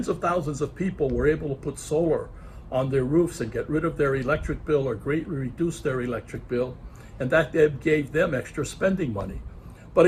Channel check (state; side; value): identical; both; correlation 1.00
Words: of thousands of people were able to put solar on their roofs and get rid of their electric bill or greatly reduce their electric bill. and that gave them extra spending money. But